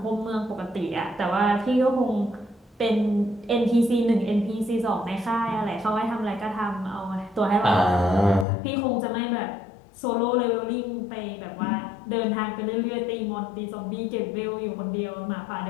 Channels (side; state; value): right; drops out; at 8.5 s